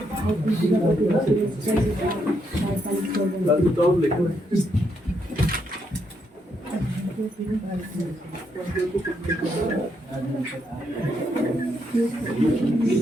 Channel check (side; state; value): both; normal; correlation 0.77